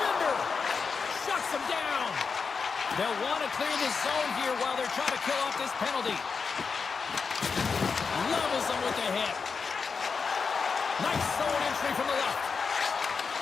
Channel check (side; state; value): right; quieter; 5.3 dB